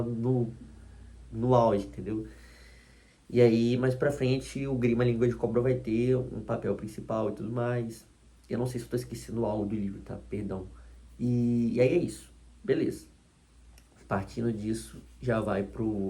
no auge, entendeu? E aí, mais pra frente, o Grima Língua de Cobra vai ter um papel principal e tudo mais. Eu não sei se eu tô esquecendo algo do livro, tá? Perdão. E aí é isso. Beleza. Partindo disso, já vai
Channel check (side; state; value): both; identical; correlation 1.00